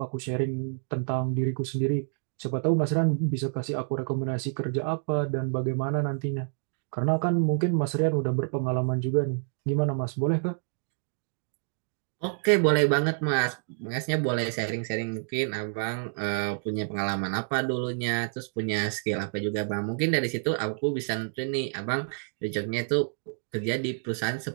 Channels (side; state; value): left; silent; digital silence